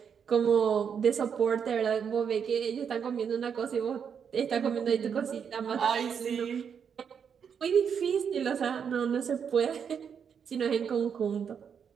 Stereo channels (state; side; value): quieter; left; 7.2 dB